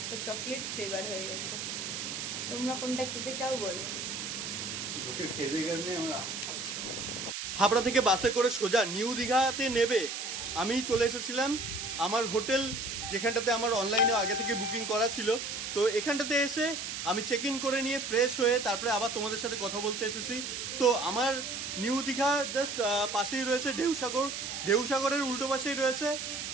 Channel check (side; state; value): right; noise; hiss, 5 dB below the sound